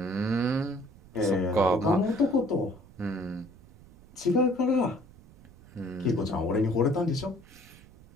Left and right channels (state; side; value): noise; right; rumble, 23 dB below the sound